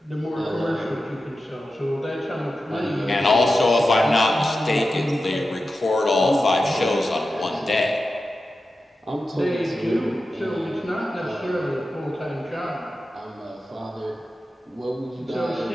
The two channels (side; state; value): both; normal; correlation 0.92